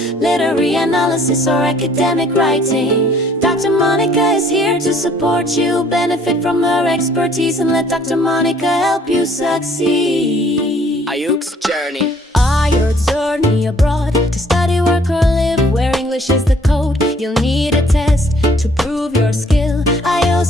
literary analysis, or academic writing, Dr. Monica is here to support you. Benefit from her expertise and let Dr. Monica help you succeed. Ayuk's journey. Your journey abroad to study, work, or live where English is the code. You'll need a test to prove your skill.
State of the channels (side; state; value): both; normal; correlation 0.60